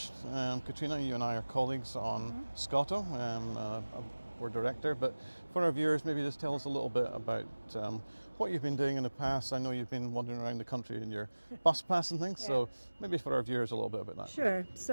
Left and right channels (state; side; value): inverted; both; correlation -1.00